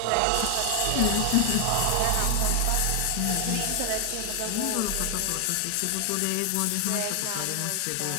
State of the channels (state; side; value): different; both; correlation 0.00